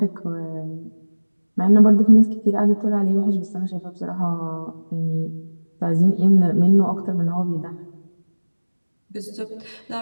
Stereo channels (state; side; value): inverted; both; correlation -1.00